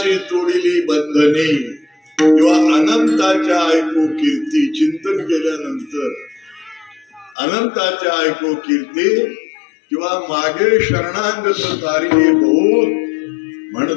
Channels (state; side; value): drops out; right; at 7.4 s